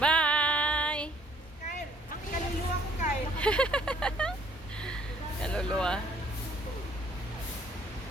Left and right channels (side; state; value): both; normal; correlation 0.61